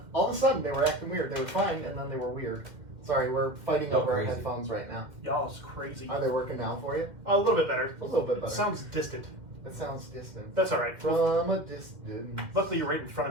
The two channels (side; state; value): left; late; 2.1 ms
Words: all of a sudden they were acting weird. They were fine, and then they were weird. Sorry, we're fighting over our crazy. headphones right now. Y'all is crazy. Are they working now for you? A little bit better. A little bit better. It sounds distant. It sounds distant. That's all right. From a distance. Luckily, you're right in front of